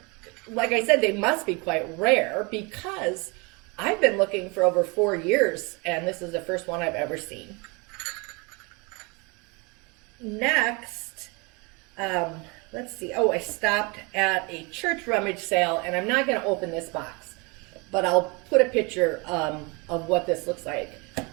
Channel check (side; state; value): left; quieter; 29.0 dB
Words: like I said, they must be quite rare because I've been looking for over 4 years, and this is the first one I've ever seen. Next, let's see. Oh, I stopped at a church rummage sale, and I'm not going to open this box, but I'll put a picture of what this looks like.